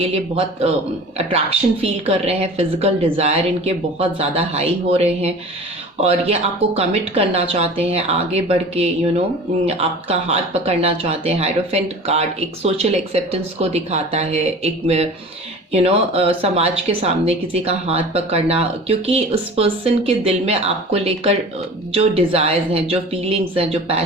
लिए बहुत अट्रैक्शन फील कर रहे हैं, फिजिकल डिज़ायर इनके बहुत ज़्यादा हाई हो रहे हैं और ये आपको कमिट करना चाहते हैं, आगे बढ़ के आपका हाथ पकड़ना चाहते हैं। हायरोफेंट कार्ड एक सोशल एक्सेप्टेंस को दिखाता है, एक समाज के सामने किसी का हाथ पकड़ना, क्योंकि उस पर्सन के दिल में आपको लेकर जो डिज़ायर्स हैं, जो फीलिंग्स हैं, जो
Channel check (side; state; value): both; normal; correlation 0.39